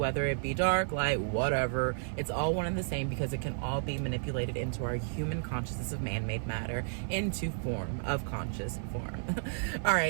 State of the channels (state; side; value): silent; left; 56 dB below the other